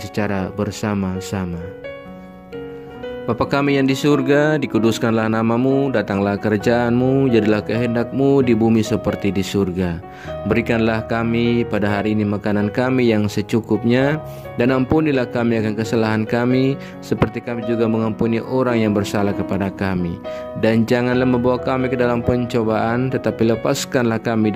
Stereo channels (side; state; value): both; identical; correlation 1.00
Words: bersama-sama. Bapa kami yang di surga, dikuduskanlah nama-Mu, datanglah kerajaan-Mu, jadilah kehendak-Mu di bumi seperti di surga. Berikanlah kami pada hari ini makanan kami yang secukupnya, dan ampunilah kami akan kesalahan kami, seperti kami juga mengampuni orang yang bersalah kepada kami. Dan janganlah membawa kami ke dalam pencobaan, tetapi lepaskanlah kami